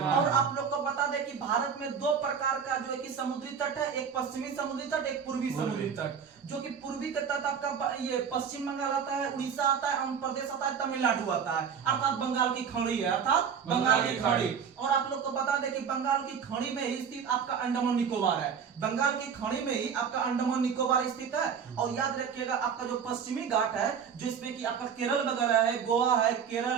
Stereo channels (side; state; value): left; quieter; 7.0 dB